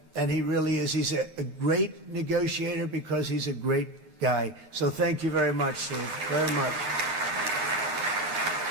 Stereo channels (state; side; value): late; left; 6.6 ms